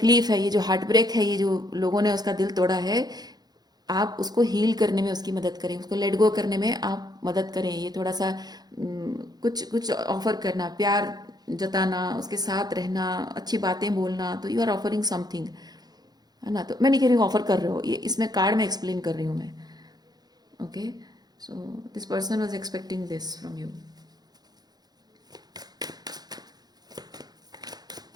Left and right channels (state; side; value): late; left; 0.19 ms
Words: है, ये जो हार्ट ब्रेक है, ये जो लोगों ने उसका दिल तोड़ा है, आप उसको हील करने में उसकी मदद करें, उसको लेट गो करने में आप मदद करें। ये थोड़ा सा कुछ कुछ ऑफर करना, प्यार जताना, उसके साथ रहना, अच्छी बातें बोलना, तो यू आर ऑफरिंग समथिंग, है ना। तो मैं नहीं कह रही हूँ ऑफर कर रहे हो, ये इसमें कार्ड में एक्सप्लेन कर रही हूँ मैं। Okay, so this person was expecting this from you.